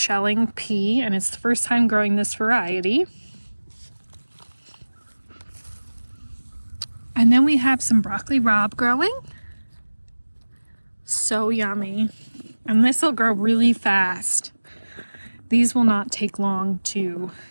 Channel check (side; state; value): both; inverted; correlation -1.00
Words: pea, and it's the first time growing this variety. And then we have some broccoli rabe growing. So yummy. And this will grow really fast. These will not take long to